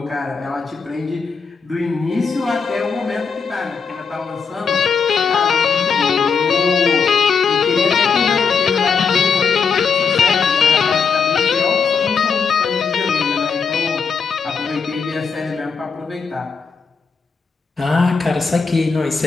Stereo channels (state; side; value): quieter; right; 5.5 dB